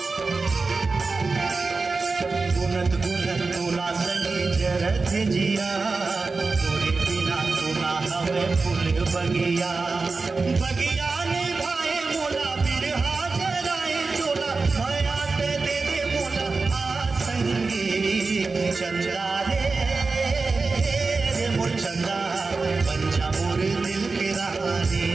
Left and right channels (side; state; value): left; quieter; 4.0 dB